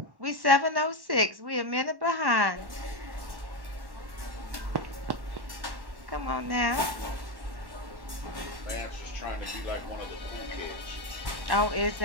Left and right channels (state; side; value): late; left; 1.1 ms